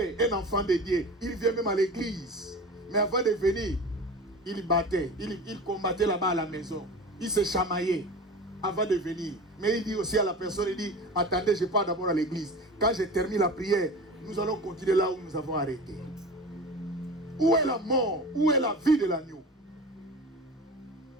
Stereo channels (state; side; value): normal; both; correlation 0.34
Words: Un enfant de Dieu, il vient même à l'église. Mais avant de venir, il battait. Il combattait là-bas à la maison. Il se chamaillait avant de venir. Mais il dit aussi à la personne, il dit, attendez, je pars d'abord à l'église. Quand je termine la prière, nous allons continuer là où nous avons arrêté. Où est la mort? Où est la vie de l'agneau?